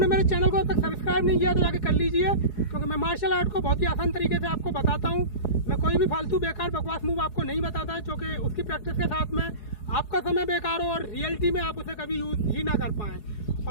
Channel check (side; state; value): right; late; 4.8 ms